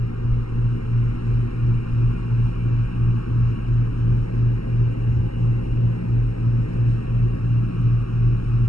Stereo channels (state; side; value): late; right; 0.75 ms